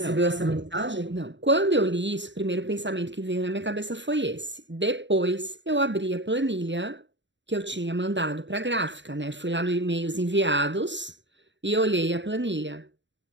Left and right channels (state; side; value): late; left; 0.53 ms